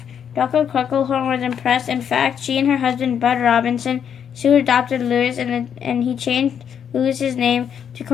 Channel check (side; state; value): right; quieter; 8.2 dB